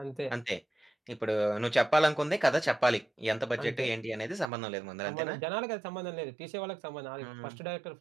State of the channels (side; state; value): left; drops out; at 4.5 s